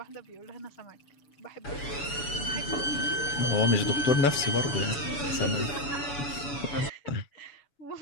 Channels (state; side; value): late; right; 7.0 ms